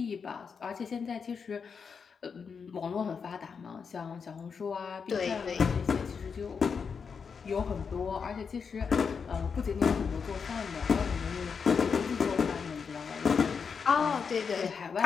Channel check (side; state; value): right; quieter; 5.9 dB